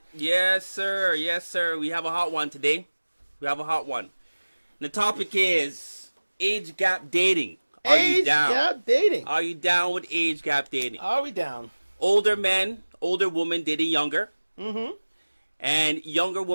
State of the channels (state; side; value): inverted; both; correlation -1.00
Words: Yes, sir. Yes, sir. We have a hot one today. We have a hot one. The topic is age gap dating. Are you down? Age gap dating. Are you down with age gap dating? Are we down? Older men, older women dating younger. Mm-hmm. And younger